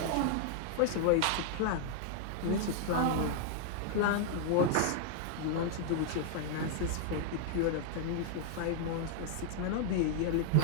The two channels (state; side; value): different; both; correlation 0.00